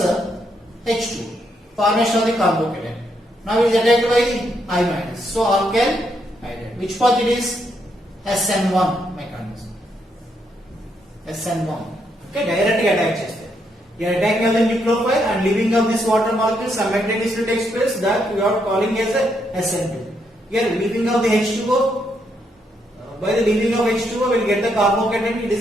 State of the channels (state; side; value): normal; both; correlation 0.77